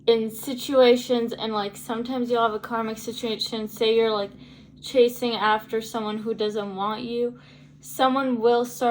in situations. And sometimes you'll have a karmic situation, say you're chasing after someone who doesn't want you. Someone will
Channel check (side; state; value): both; identical; correlation 1.00